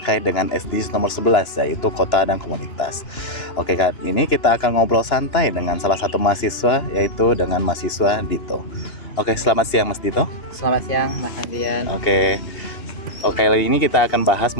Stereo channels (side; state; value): right; late; 2.9 ms